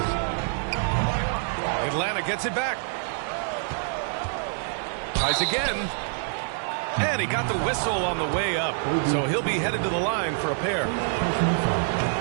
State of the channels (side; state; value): left; silent; digital silence